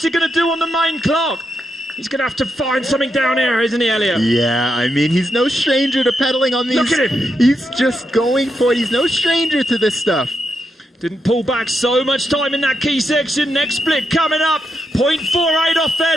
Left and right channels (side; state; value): both; normal; correlation 0.83